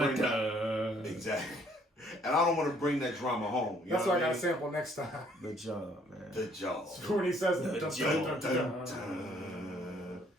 that. Exactly. And I don't want to bring that drama home. You That's know why I what got to sample next time. The job, man. The job. When he says it. The Dun.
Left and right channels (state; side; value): normal; both; correlation 0.63